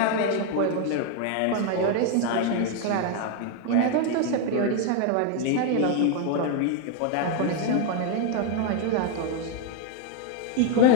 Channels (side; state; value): both; different; correlation 0.01